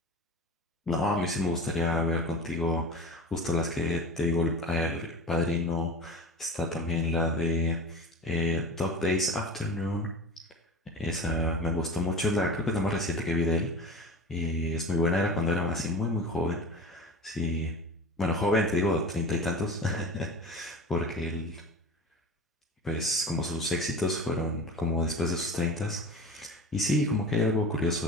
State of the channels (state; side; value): normal; both; correlation 0.32